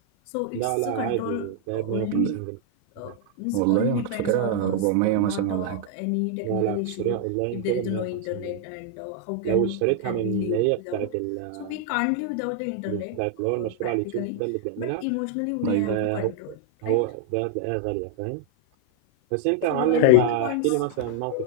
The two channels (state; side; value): different; both; correlation -0.01